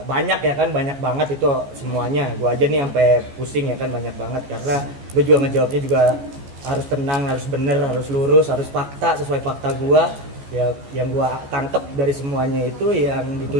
banyak ya kan, banyak banget itu semuanya. Gua aja nih sampai pusing ya kan, banyak banget karena gua juga ngejawabnya juga harus tenang, harus bener, harus lurus, harus fakta sesuai fakta gua. Ya, yang gua tangkap dari semuanya itu yang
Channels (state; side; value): late; left; 14 ms